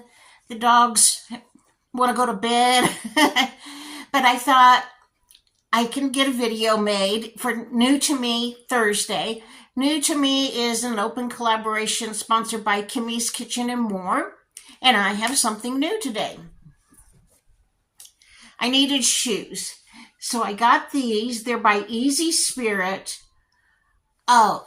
The dogs want to go to bed. But I thought I can get a video made for New to Me Thursday. New to Me is an open collaboration sponsored by Kimmy's Kitchen and More. And I have something new today. I needed shoes. So I got these. They're by Easy Spirit. Oh,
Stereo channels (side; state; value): both; identical; correlation 1.00